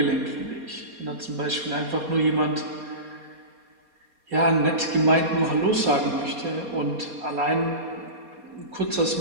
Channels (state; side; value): late; left; 4.2 ms